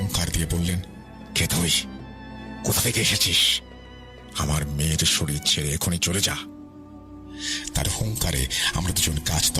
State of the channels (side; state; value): both; identical; correlation 1.00